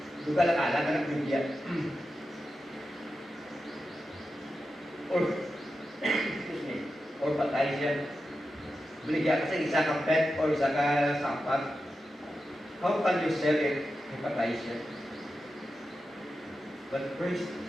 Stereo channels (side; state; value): both; normal; correlation 0.91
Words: duga lang alam ka ng bigyan. Excuse me, or patay siya. Binigyan ka sa isa kang pet or isa ka sampat. How can you sell it? Patay siya. But praise